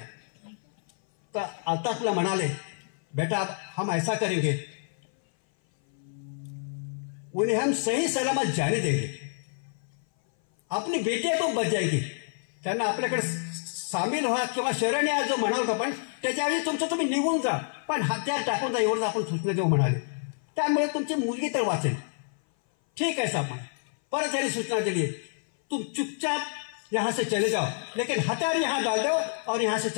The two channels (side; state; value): right; silent; 57 dB below the other